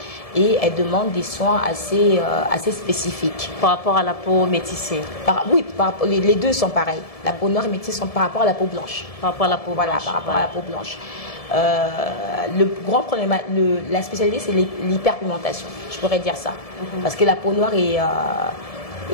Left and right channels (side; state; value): right; late; 1.7 ms